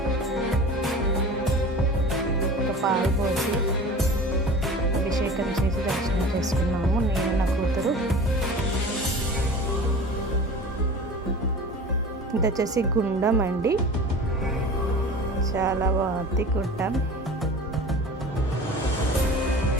ఒక పాలు పోసి అభిషేకం చేసి దర్శనం చేసుకున్నాము నేను, నా కూతురు. ఇది వచ్చేసి గుండం అండి, చాలా బాగుంది గుండం.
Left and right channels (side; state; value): both; normal; correlation 0.38